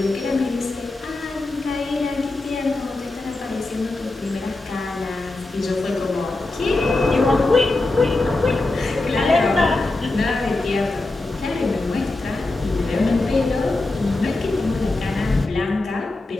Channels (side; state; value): right; quieter; 3.0 dB